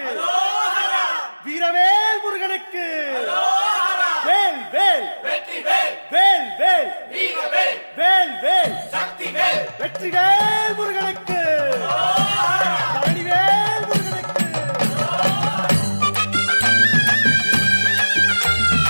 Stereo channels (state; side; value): inverted; both; correlation -1.00